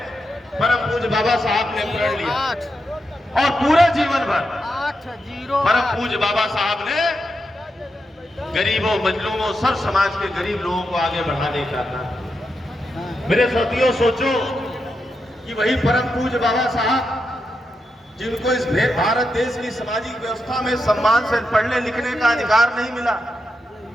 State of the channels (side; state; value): both; normal; correlation 0.86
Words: परम पूज्य बाबा साहब ने प्रण लिया। और पूरे जीवन भर परम पूज्य बाबा साहब ने गरीबों, मजलूमों, सर्व समाज के गरीब लोगों को आगे बढ़ाने का था। मेरे साथियों, सोचो कि वही परम पूज्य बाबा साहब जिनको इस भारत देश की सामाजिक व्यवस्था में सम्मान से पढ़ने लिखने का अधिकार नहीं मिला,